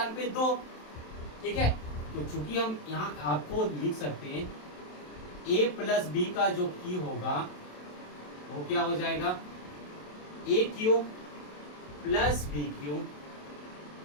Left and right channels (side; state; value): right; late; 27 ms